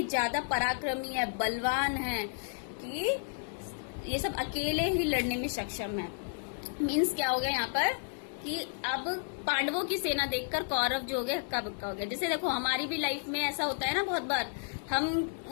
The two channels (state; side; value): silent; right; digital silence